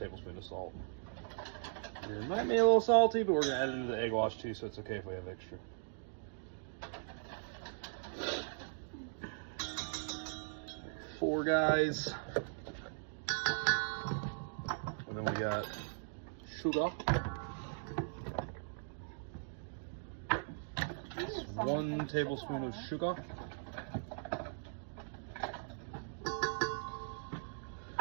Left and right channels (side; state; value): left; silent; digital silence